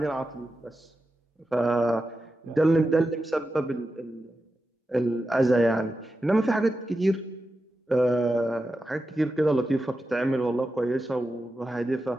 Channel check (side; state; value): both; normal; correlation 0.90